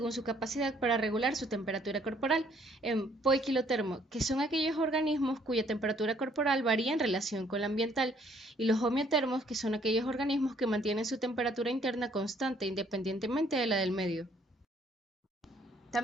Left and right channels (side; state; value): both; normal; correlation 0.64